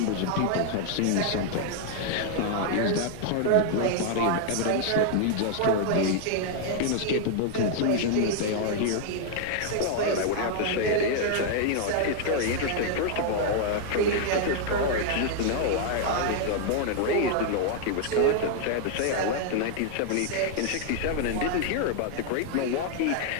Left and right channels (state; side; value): different; both; correlation 0.00